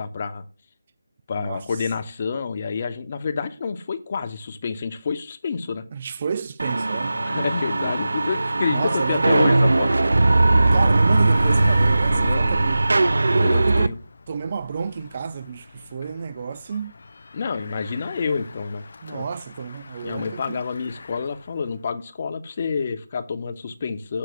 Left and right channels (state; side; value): inverted; both; correlation -0.92